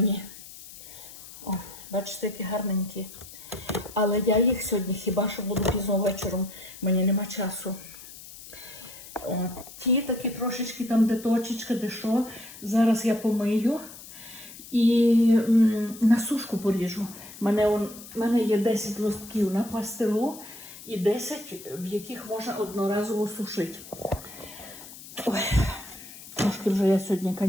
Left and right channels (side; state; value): left; noise; hiss, 16 dB below the sound